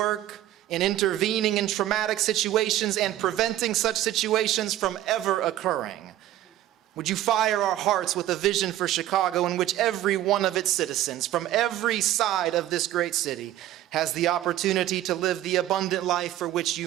in intervening in traumatic situations and preventing such situations from ever occurring? Would you fire our hearts with a vision for Chicago in which every one of its citizens from every side of this great city has the opportunity to live the abundant life for which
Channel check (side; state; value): left; quieter; 13.4 dB